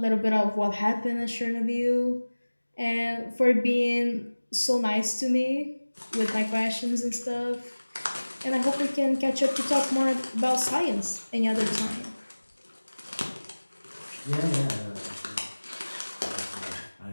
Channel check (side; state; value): both; inverted; correlation -1.00